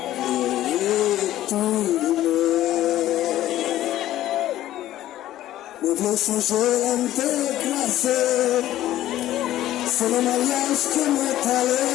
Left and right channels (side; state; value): right; quieter; 13.7 dB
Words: Me songer à me déclasser, c'est le mariage que m'est allé,